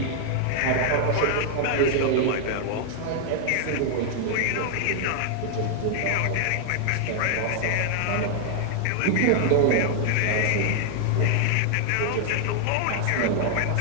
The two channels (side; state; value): both; different; correlation 0.00